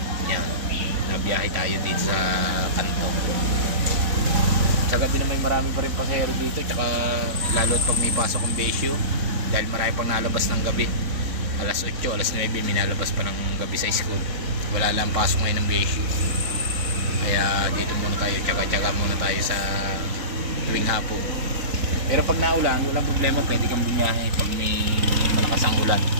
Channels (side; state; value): left; late; 3.8 ms